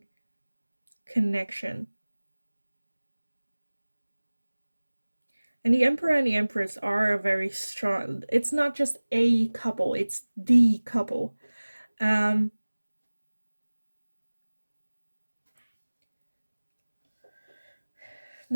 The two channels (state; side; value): inverted; both; correlation -1.00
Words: connection. And the Emperor and the Empress are a very strong, it's not just a couple, it's the couple. There